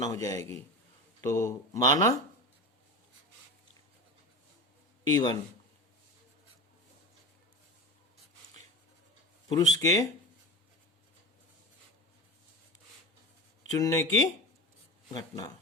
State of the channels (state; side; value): normal; both; correlation 0.28